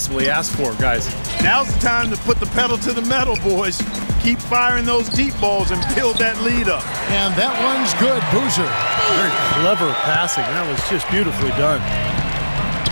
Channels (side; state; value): both; inverted; correlation -1.00